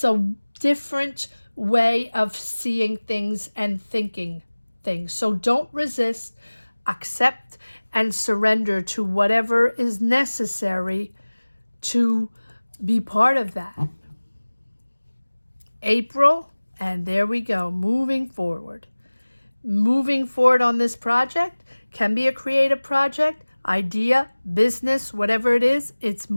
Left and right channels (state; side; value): inverted; both; correlation -1.00